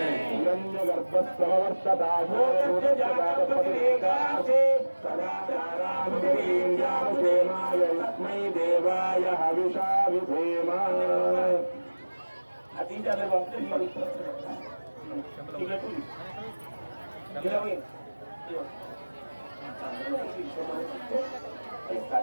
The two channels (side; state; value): both; inverted; correlation -1.00